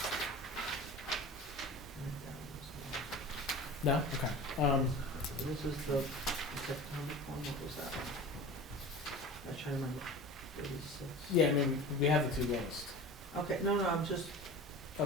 No? Okay. This is the September one, what was that? I'm trying to remember. 36. Yeah, I mean, we have the 2 lowest. Okay, no, I'm just,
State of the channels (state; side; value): normal; both; correlation 0.36